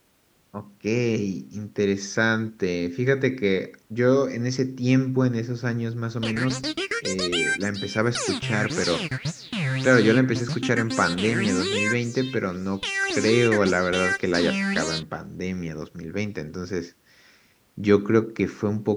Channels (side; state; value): both; identical; correlation 1.00